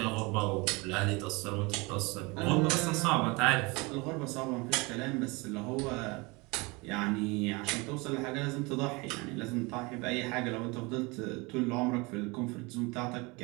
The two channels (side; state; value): left; quieter; 26.2 dB